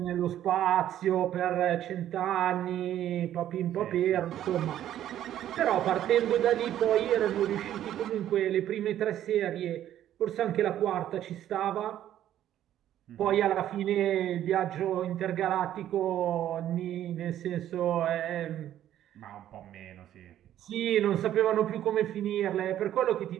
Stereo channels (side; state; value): left; quieter; 11.7 dB